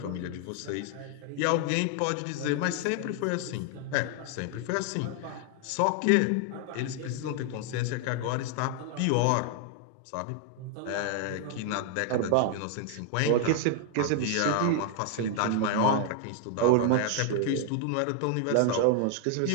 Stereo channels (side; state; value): both; different; correlation 0.00